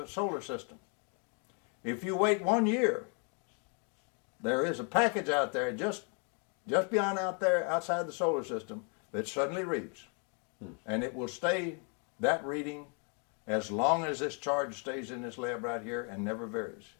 solar system. If you wait 1 year, there is a package out there just beyond out there outside the solar system that suddenly reads. And it will stay that reading as long as this charge stays in this lab right here and never varies,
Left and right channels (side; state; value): right; quieter; 38.8 dB